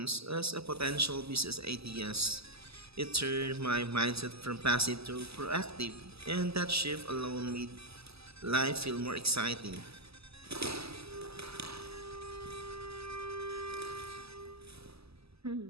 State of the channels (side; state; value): left; late; 0.78 ms